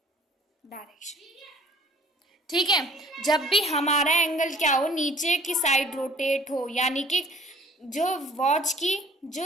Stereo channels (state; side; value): normal; both; correlation 0.53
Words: direction. ठीक है, जब भी हमारा एंगल क्या हो, नीचे की साइड रोटेट हो, यानी कि जो वॉच की